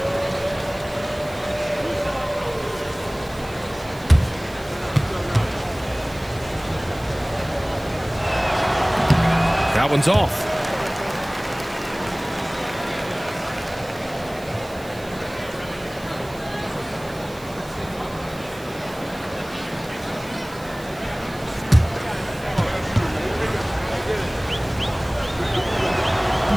That one's off.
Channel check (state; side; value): noise; right; hiss, 21 dB below the sound